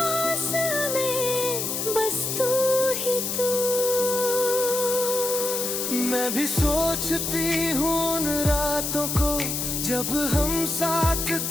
में बस तू ही तू। मैं भी सोचती हूँ उन रातों को जब हम साथ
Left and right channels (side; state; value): left; noise; hiss, 2 dB below the sound